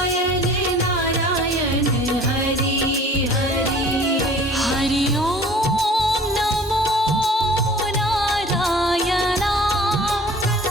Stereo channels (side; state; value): both; normal; correlation 0.48